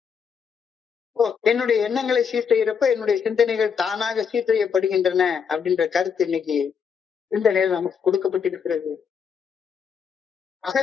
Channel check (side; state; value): right; quieter; 6.6 dB